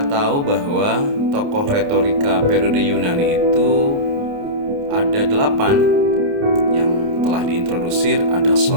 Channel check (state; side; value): late; left; 29 ms